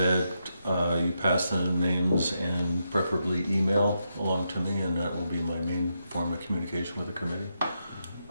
you pass the names and preferably email along to me, and that will be my main form of communication with the committee.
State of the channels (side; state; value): both; inverted; correlation -0.84